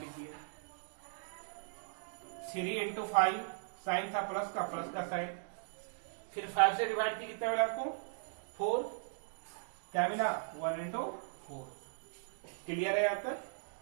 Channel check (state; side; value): silent; left; digital silence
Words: दिया। 3 इंटू 5 साइन था प्लस का साइन, फिर 5 से डिवाइड किया कितना मिला आपको 4, क्या मिला 1 इंटू 4। क्लियर है यहां तक।